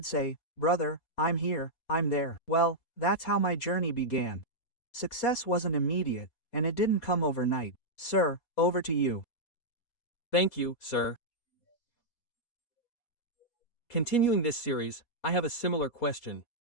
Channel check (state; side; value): late; right; 4.3 ms